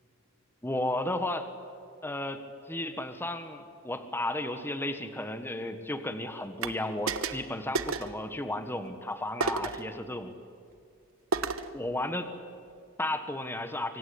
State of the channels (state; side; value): normal; both; correlation 0.43